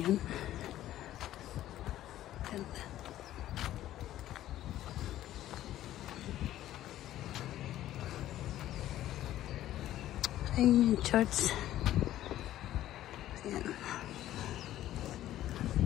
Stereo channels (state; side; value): quieter; right; 13.4 dB